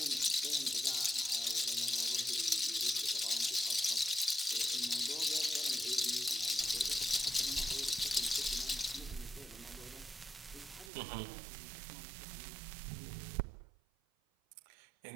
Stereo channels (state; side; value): drops out; left; at 10.9 s